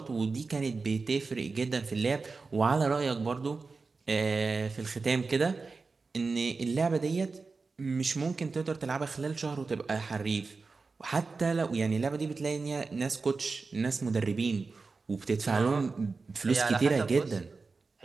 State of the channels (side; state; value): left; quieter; 4.2 dB